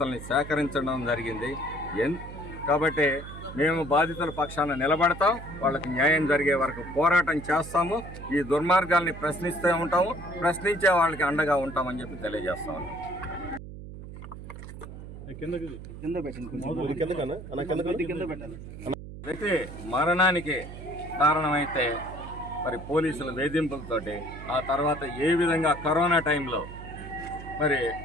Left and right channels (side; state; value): right; noise; hum, 12 dB below the sound